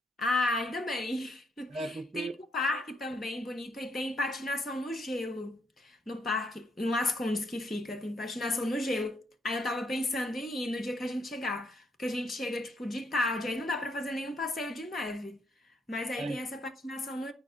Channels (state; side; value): normal; both; correlation 0.74